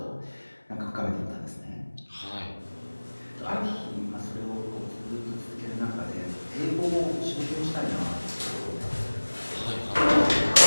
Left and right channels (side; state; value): both; inverted; correlation -1.00